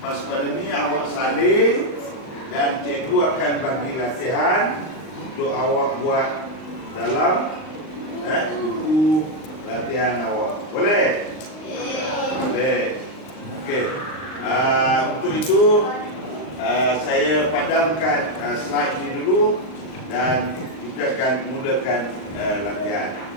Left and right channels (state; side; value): late; right; 39 ms